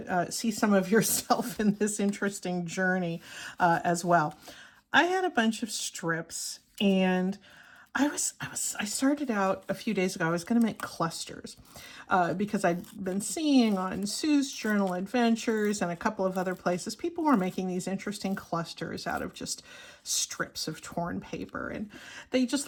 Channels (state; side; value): identical; both; correlation 1.00